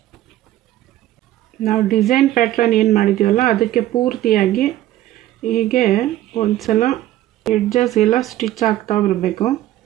ನಾವು ಡಿಸೈನ್ ಪ್ಯಾಟ್ರನ್ ಏನು ಮಾಡಿದ್ದೀವಲ್ಲ ಅದಕ್ಕೆ ಪೂರ್ತಿಯಾಗಿ ಹೀಗೆ ಒಂದು ಸಲ ಎಡ್ಜಸ್ ಎಲ್ಲ ಸ್ಟಿಚ್ ಆಗ್ತಾ ಬರಬೇಕು.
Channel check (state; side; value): quieter; left; 14.2 dB